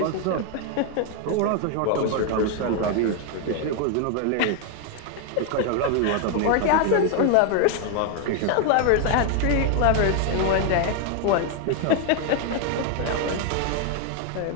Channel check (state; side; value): different; both; correlation 0.01